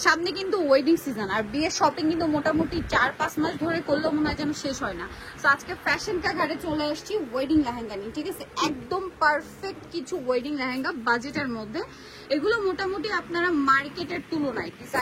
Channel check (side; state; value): both; identical; correlation 1.00